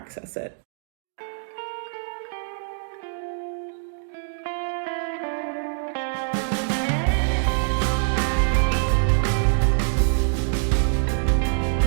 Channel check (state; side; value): silent; left; digital silence